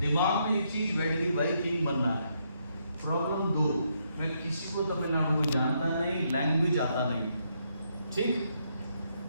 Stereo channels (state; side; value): inverted; both; correlation -0.76